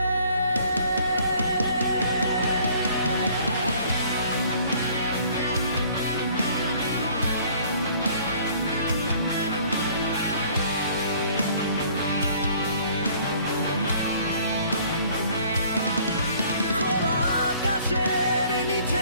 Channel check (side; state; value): both; inverted; correlation -0.56